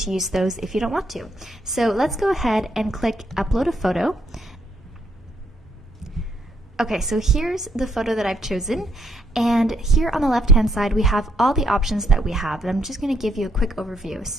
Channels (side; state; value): both; normal; correlation 0.73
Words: use those if you don't want to. So let's go ahead and click Upload a Photo. Okay, so here's the photo that I've chosen, and here on the left-hand side we have all the options that we have, and I'm just going to give you a quick overview.